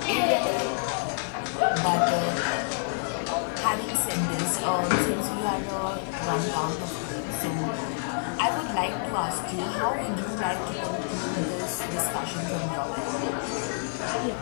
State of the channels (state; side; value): silent; right; 59 dB below the other